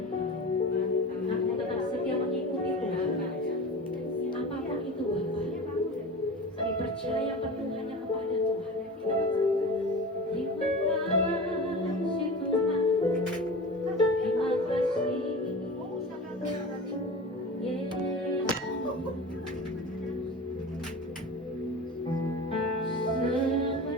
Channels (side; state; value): both; normal; correlation 0.32